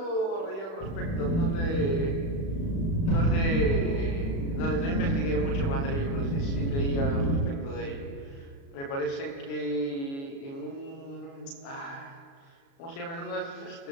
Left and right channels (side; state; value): right; late; 36 ms